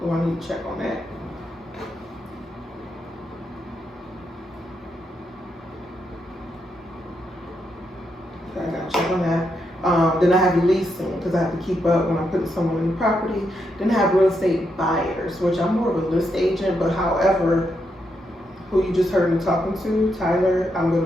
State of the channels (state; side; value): normal; both; correlation 0.81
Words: I need to check on that. So I gotta check on that. Then I have leasing because I have to keep up when I'm putting someone in the property. Then I have real estate buyers, which I'm more of a list agent, but however, who you just heard me talking to, Tyler, I'm going